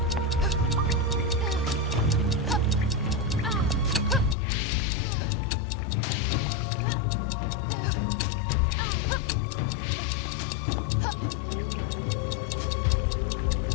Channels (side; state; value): right; drops out; at 4.4 s